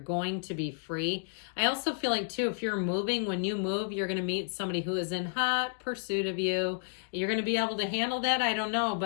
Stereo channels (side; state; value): right; silent; digital silence